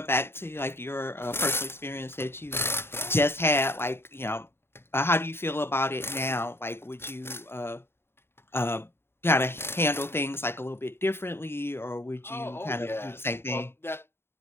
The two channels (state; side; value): late; right; 0.11 ms